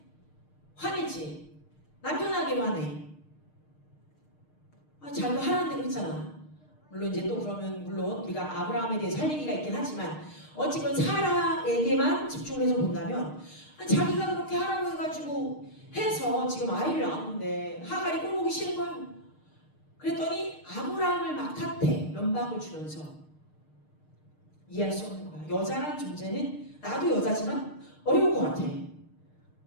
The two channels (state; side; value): late; right; 6.5 ms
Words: 화내지. 남편에게로 화내. 자기가 하라는 대로 했잖아. 물론 이제 또 그러면 물론 우리가 아브라함에 대해서 할 얘기가 있긴 하지만 어쨌건 사라에게만 집중해서 본다면 자기가 그렇게 하라고 해가지고 해서 지금 아이를 낳았는데 하갈이 꼴보기 싫은 거야. 그랬더니 아브라함을 막 탓해. 면박을 주면서. 이해할 수 없는 거야. 여자란 존재는 나도 여자지만 어려운 것 같아.